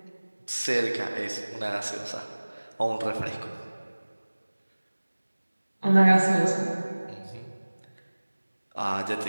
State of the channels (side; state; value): both; inverted; correlation -1.00